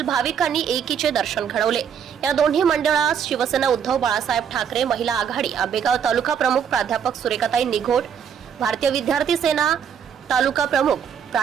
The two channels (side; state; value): left; quieter; 7.9 dB